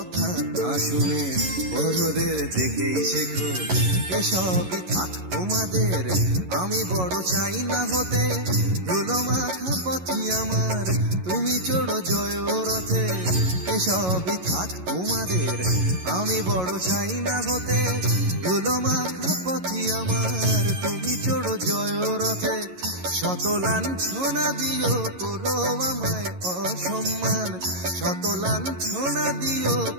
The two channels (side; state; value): left; late; 11 ms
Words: না শুনে বড়দের দেখেই শেখো। এসবই থাক তোমাদের, আমি বড় চাই না হতে। ধুলো মাখা পথি আমার, তুমি চড়ো জয় রথে। এসবই থাক তোমাদের, আমি বড় চাই না হতে। ধুলো মাখা পথি আমার, তুমি চড়ো জয় রথে। শত লাঞ্ছনা দিও করো আমায় অসম্মান, শত লাঞ্ছনা দিও